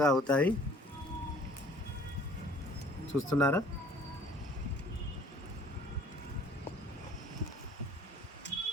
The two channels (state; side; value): normal; both; correlation 0.54